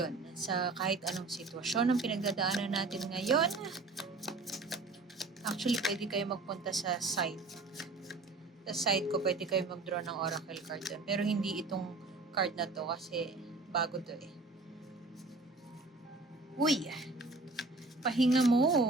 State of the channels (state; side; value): quieter; left; 3.4 dB